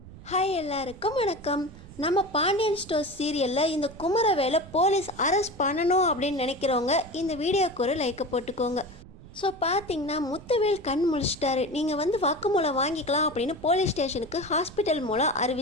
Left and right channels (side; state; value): right; noise; rumble, 18 dB below the sound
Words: Hi எல்லாருக்கும் வணக்கம். நம்ம பாண்டியன் ஸ்டோர்ஸ் சீரியலில் இந்த குமரவேலை போலீஸ் அரெஸ்ட் பண்ணணும் அப்படின்னு நினைக்கிறவங்க இந்த வீடியோக்கு ஒரு லைக்கை போட்டுக்கோங்க. ஸோ பார்த்தீங்கன்னா முத்துவேல் கண் முழிச்சிட்டாரு. நீங்கள் வாக்குமூலம் வாங்கிக்கலாம் அப்படின்னு போலீஸ் ஸ்டேஷனுக்கு ஹாஸ்பிட்டல் மூலம்